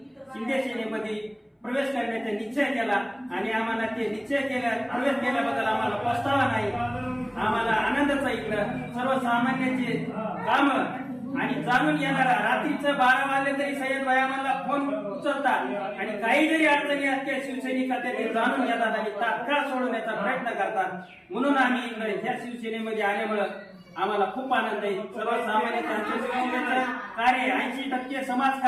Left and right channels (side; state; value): both; identical; correlation 1.00